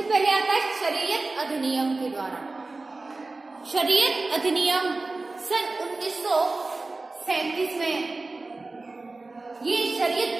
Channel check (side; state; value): left; quieter; 3.4 dB